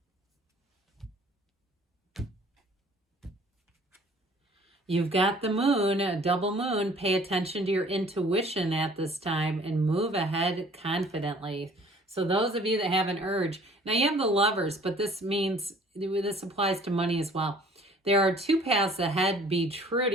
You've got the moon, a double moon. Pay attention to your intuition at this time and move ahead confidently. So those of you that have an urge, now you have the Lovers, but this means, this applies to money as well. There are two paths ahead. Be true to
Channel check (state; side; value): normal; both; correlation 0.53